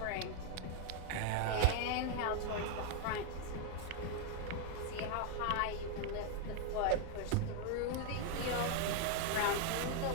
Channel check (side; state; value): both; different; correlation 0.00